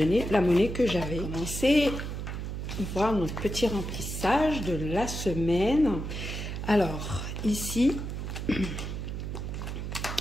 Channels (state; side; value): noise; right; hum, 5 dB below the sound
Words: la monnaie que j'avais. On va commencer à voir notre petit remplissage de la semaine. Alors ici,